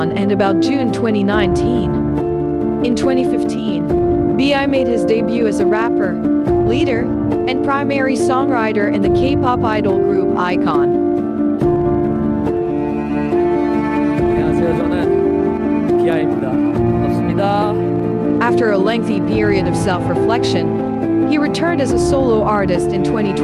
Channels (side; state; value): both; identical; correlation 1.00